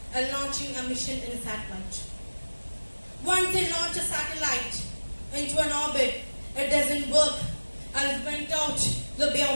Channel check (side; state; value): both; inverted; correlation -1.00